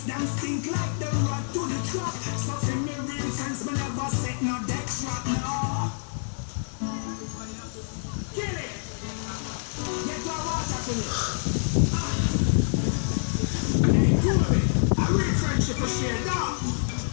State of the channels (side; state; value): right; silent; digital silence